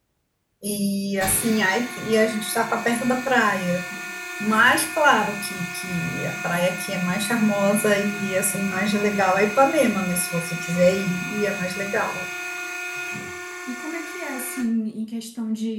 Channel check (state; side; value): identical; both; correlation 1.00